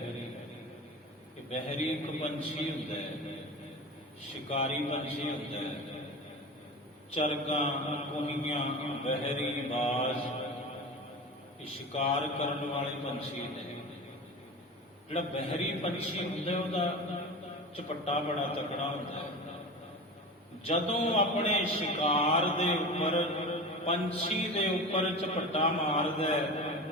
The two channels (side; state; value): both; normal; correlation 0.30